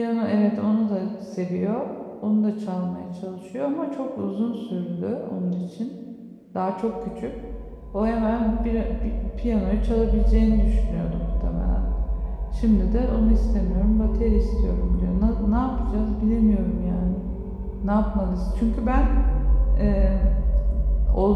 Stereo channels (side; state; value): both; identical; correlation 1.00